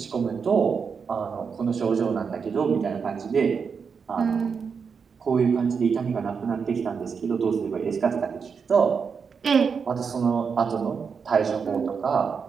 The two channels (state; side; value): quieter; left; 5.9 dB